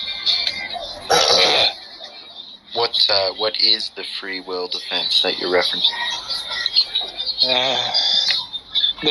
What is the free will defense that you're referencing?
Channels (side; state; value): both; identical; correlation 1.00